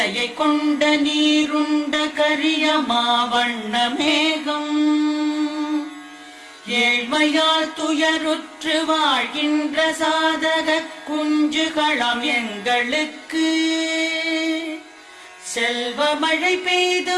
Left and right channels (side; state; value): both; identical; correlation 1.00